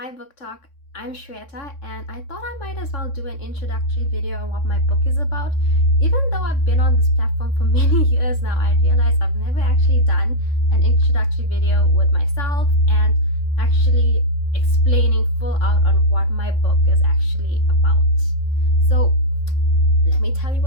Book Talk, I'm Shweta and I thought I might as well do an introductory video on what my book is about. Even though I've been on this platform for many years now, I realize I've never actually done an introductory video with myself and actually explaining full out on what my book is actually about. So let me tell you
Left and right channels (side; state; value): right; late; 3.6 ms